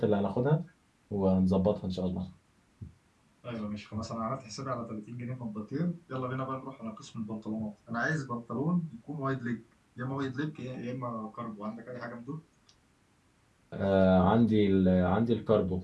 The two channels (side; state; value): both; identical; correlation 1.00